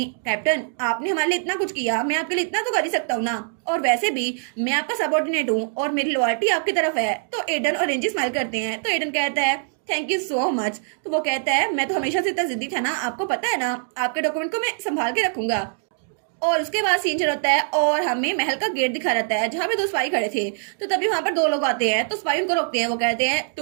कैप्टन, आपने हमारे लिए इतना कुछ किया, मैं आपके लिए इतना तो कर ही सकता हूँ ना, और वैसे भी मैं आपका सबऑर्डिनेट हूँ और मेरी लॉयल्टी आपकी तरफ है। तो एडन और एंजी स्माइल करते हैं। तो एडन कहता है थैंक यू सो मच। तो वो कहता है मैं तो हमेशा से इतना जिद्दी था ना, आपको पता है ना, आपके डॉक्यूमेंट को मैं संभाल के रखूंगा। और उसके बाद सीन चल होता है और हमें महल का गेट दिखा रहता है जहाँ पे दो सिपाही खड़े थे। तो तभी वहां पर दो लोग आते हैं, तो सिपाही उनको रोकते हैं। वो कहते हैं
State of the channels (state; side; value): silent; left; digital silence